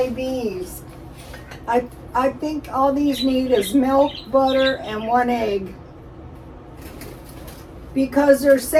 these. I think all these need is milk, butter, and 1 egg. Because they're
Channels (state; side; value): identical; both; correlation 1.00